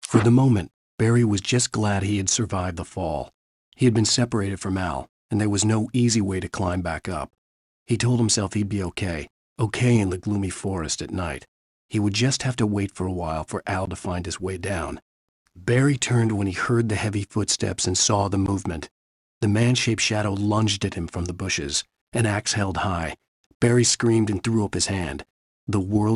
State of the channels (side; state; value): both; identical; correlation 1.00